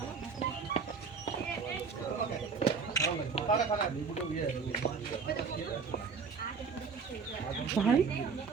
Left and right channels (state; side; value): quieter; left; 5.4 dB